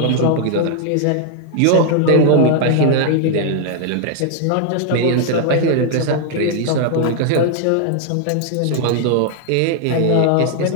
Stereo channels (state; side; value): different; both; correlation 0.00